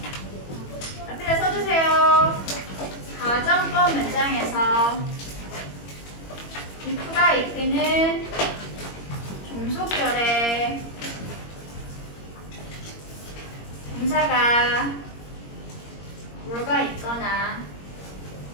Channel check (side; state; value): right; late; 21 ms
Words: 앞에다 써주세요. 가정법 문장에서 if가 이끄는 종속절에 동사가 were가 있거나